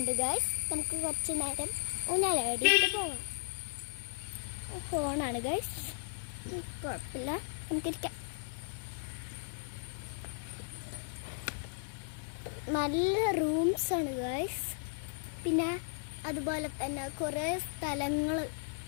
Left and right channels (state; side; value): silent; right; digital silence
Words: ഗായ്സ്. നമുക്ക് കുറച്ച് നേരം ഊഞ്ഞാലാടിയിട്ട് പോകാം. ഫോണാണ് ഗായ്സ്, കുഴപ്പമില്ല, നമുക്കിരിക്കാം. നല്ല റൂംസാണ് ഗായ്സ്. പിന്നെ അതുപോലെ തന്നെ കുറേ സ്ഥലങ്ങൾ